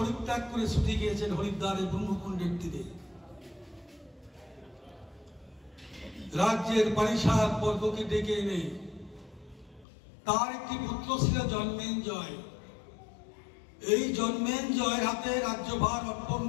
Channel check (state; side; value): drops out; right; at 9.9 s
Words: করে ছুটে গিয়েছেন হরিদ্বারের ব্রহ্মকুণ্ডের তীরে। রাজ্যের পারিষদ বর্গকে ডেকে এনে তার একটি পুত্র ছিল জন্মেঞ্জয়। এই জন্মেঞ্জয়ের হাতে রাজ্যভার অর্পণ